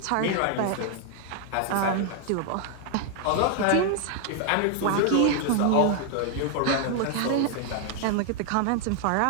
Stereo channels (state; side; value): different; both; correlation 0.00